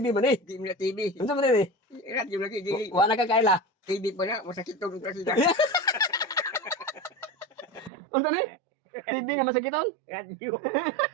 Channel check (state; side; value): drops out; left; at 7.9 s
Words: man ni? Di mo na TV. Unsa man ni? Radio lagi, di. Wa na ka kaila. TV pa na, masakit tong kasi na. Unsa ni? TV nga masakiton? Radio.